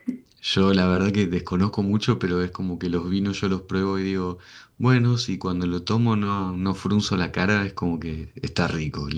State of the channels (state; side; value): identical; both; correlation 1.00